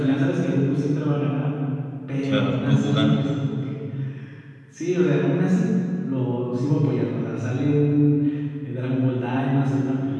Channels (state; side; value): identical; both; correlation 1.00